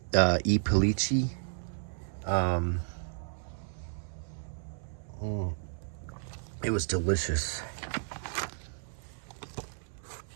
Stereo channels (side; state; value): left; silent; 56 dB below the other